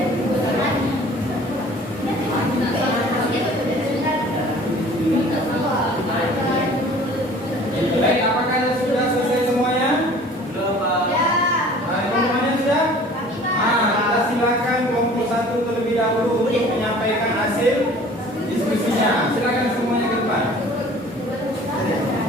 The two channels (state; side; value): normal; both; correlation 0.48